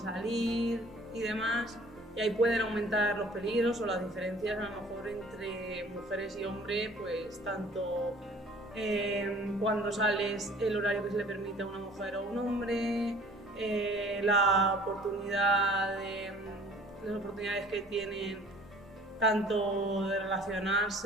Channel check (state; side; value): normal; both; correlation 0.50